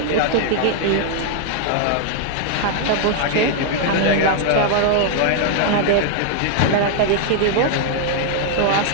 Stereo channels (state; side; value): different; both; correlation 0.00